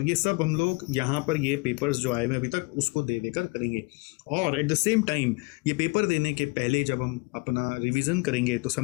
ये सब हम लोग यहाँ पर ये पेपर्स जो आए हुए अभी तक उसको दे देकर करेंगे। और एट द सेम टाइम ये पेपर देने के पहले जब हम अपना रिवीजन करेंगे तो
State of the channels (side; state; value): right; quieter; 28.9 dB